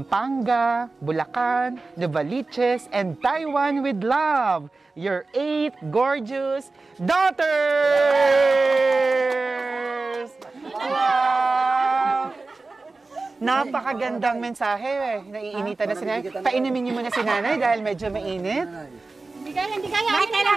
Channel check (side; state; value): left; quieter; 3.6 dB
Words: Bulacan, Novaliches, and Taiwan with love, your 8 gorgeous daughters! Wow! Napakagandang mensahe. Naiinitan na si Nanay. Painumin niyo muna si Nanay dahil medyo mainit. Hindi kaya. May